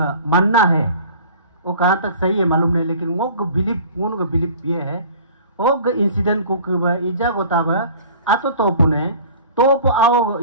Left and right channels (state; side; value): inverted; both; correlation -0.45